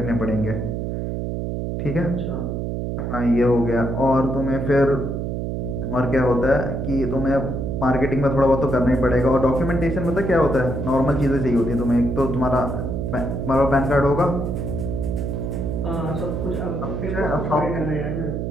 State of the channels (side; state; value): right; noise; hum, 3 dB below the sound